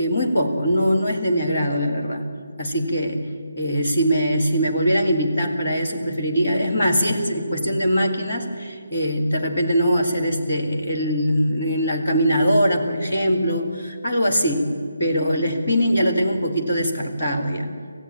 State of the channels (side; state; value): both; inverted; correlation -0.80